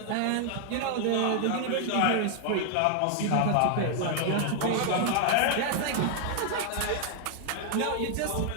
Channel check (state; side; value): different; both; correlation 0.00